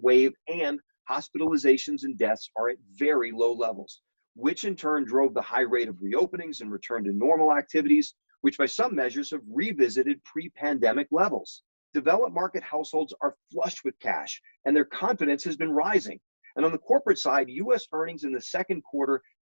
wave, and hospitalizations and deaths are at very low levels, which in turn drove the high rate of reopenings and return to normal activities, which by some measures have revisited pre-pandemic levels. Developed market households are flush with cash, and their confidence has been rising. And on the corporate side, US earnings in the second quarter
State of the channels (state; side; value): inverted; both; correlation -1.00